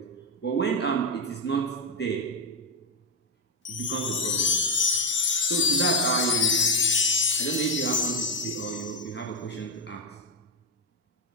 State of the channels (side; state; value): both; normal; correlation 0.05